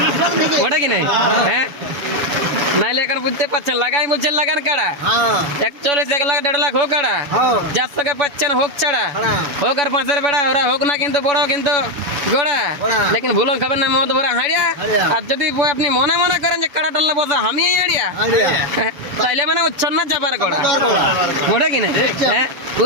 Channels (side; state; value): left; late; 7.0 ms